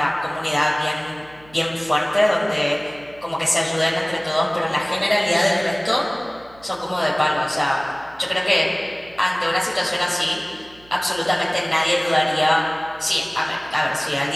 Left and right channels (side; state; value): right; noise; hum, 25 dB below the sound